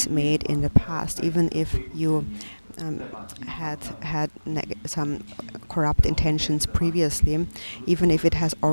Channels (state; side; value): inverted; both; correlation -1.00